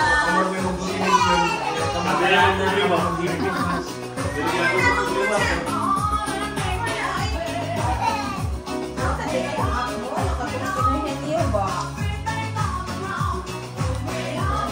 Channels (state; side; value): identical; both; correlation 1.00